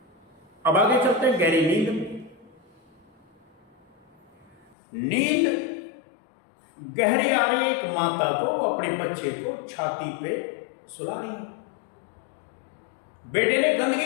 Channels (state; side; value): drops out; right; at 4.8 s